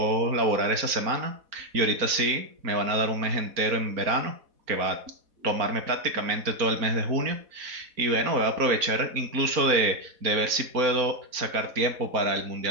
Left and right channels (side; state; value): left; late; 4.4 ms